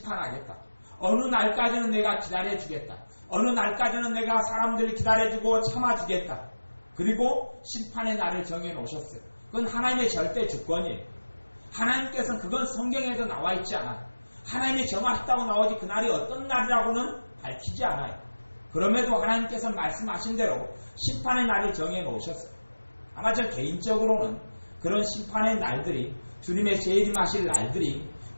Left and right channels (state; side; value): inverted; both; correlation -1.00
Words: 어느 날까지는 내가 기다려주겠다. 어느 날까지는 내가 사람들을 기다려주고 참아주겠다. 그리고 심판의 날을 정해놓으셨어요. 그건 하나님의 절대 주권이에요. 하나님께서는 그건 성경에도 나와 있지 않아요. 하나님이 정하셨다고 나오지 그날이 어떤 날이라고는 밝히지 않아요. 그럼에도 하나님께서 말씀하신 대로 심판의 날을 정해놓으셨어요. 아마 저 개인적으로는 그런 심판의 날들이 주님의 재림하실 날들이